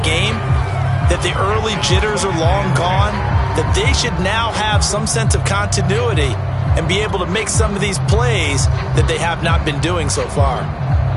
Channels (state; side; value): identical; both; correlation 1.00